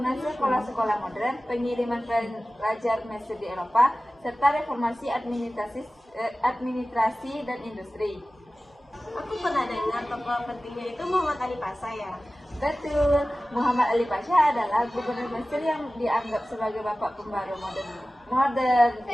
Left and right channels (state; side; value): normal; both; correlation 0.96